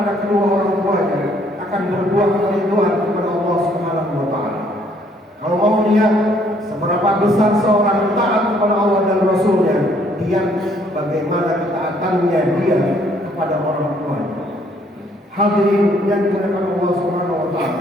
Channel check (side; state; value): both; normal; correlation 0.65